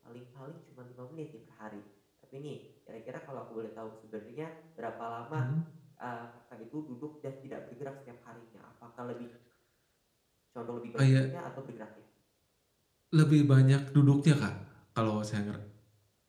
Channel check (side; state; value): both; identical; correlation 1.00